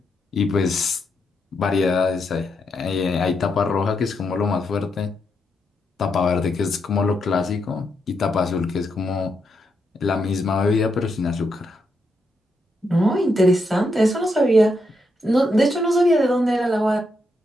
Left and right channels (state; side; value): normal; both; correlation 0.81